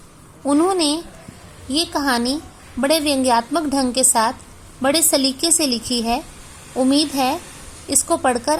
उन्होंने ये कहानी बड़े व्यंग्यात्मक ढंग के साथ बड़े सलीके से लिखी है। उम्मीद है इसको पढ़कर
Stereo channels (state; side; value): identical; both; correlation 1.00